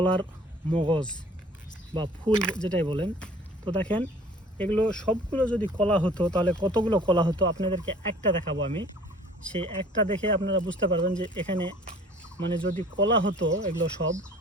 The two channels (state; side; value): normal; both; correlation 0.50